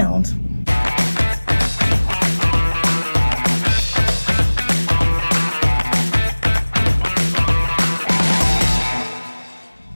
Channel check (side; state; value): both; inverted; correlation -1.00